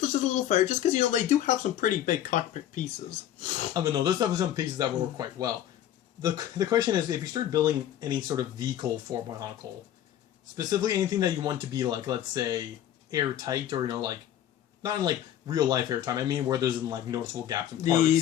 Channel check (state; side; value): quieter; right; 11.4 dB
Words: it's just a little fire, just because, they do have some pretty big cockpit pieces. I mean, no, there's definitely some pieces that will work quite well. The question is, if you start building any sort of vehicle for Bionicle, specifically anything that you want to be, let's say, airtight, or, not in, real life airtime, I mean where there's, noticeable gaps in